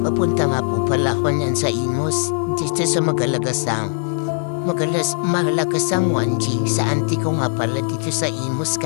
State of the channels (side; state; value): right; silent; 66 dB below the other